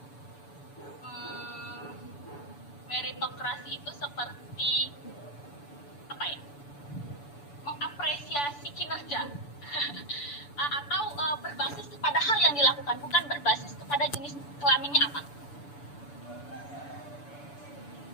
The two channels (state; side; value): late; right; 6.9 ms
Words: meritokrasi itu seperti apa ya? Mengapresiasi kinerja atau berbasis kepada hal yang dilakukan, bukan berbasis kepada jenis kelaminnya apa.